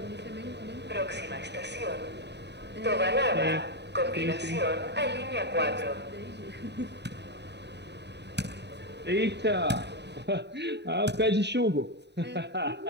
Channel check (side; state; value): left; late; 0.50 ms